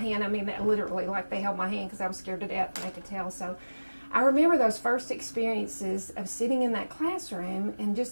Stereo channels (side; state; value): both; inverted; correlation -1.00